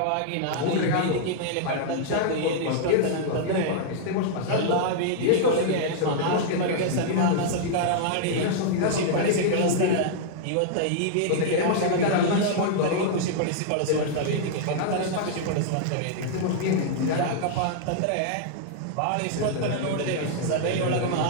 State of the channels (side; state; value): both; different; correlation -0.01